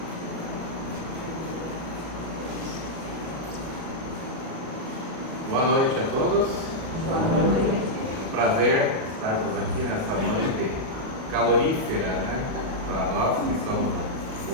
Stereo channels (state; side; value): late; left; 37 ms